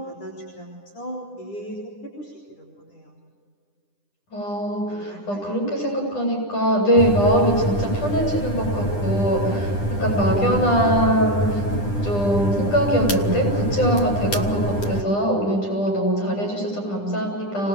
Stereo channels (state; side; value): late; right; 10 ms